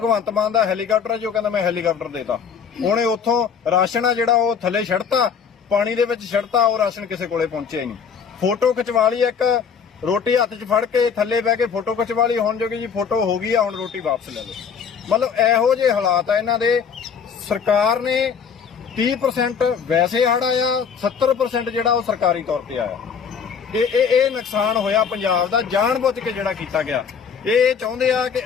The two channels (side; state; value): right; quieter; 6.7 dB